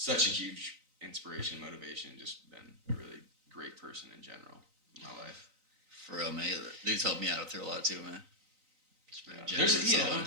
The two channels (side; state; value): left; late; 3.9 ms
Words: a huge inspiration, motivation, just been a really great person in general in my life. For real, man. They've helped me out through a lot too, man. Yeah. There's